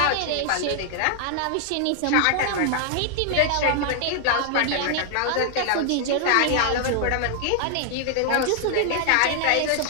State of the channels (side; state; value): both; different; correlation 0.00